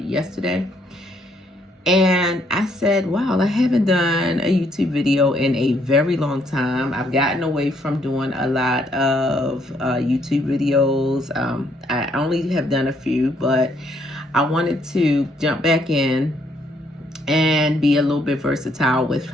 And I said, wow, I haven't done a YouTube video in a very long time. I've gotten away from doing a lot of YouTube videos. I only have done a few, but I wanted to jump back in and be a little bit versatile with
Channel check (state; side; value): normal; both; correlation 0.70